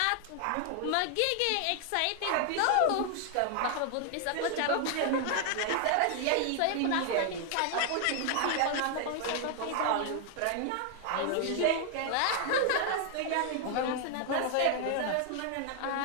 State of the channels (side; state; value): both; different; correlation 0.00